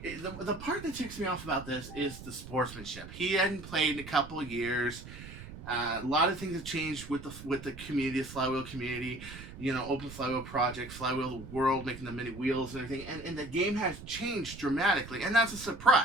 part that ticks me off about this is the sportsmanship. He hadn't played in a couple of years. A lot of things have changed with the community, the flywheel community. You know, Open Flywheel Project, Flywheel World, making the mini wheels and everything. And the game has changed dramatically, and that's a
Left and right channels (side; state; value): right; noise; rumble, 13 dB below the sound